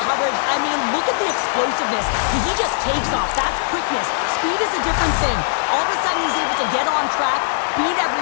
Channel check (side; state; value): right; silent; 64 dB below the other